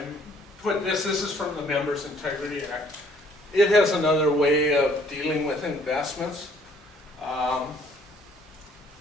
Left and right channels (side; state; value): both; normal; correlation 0.61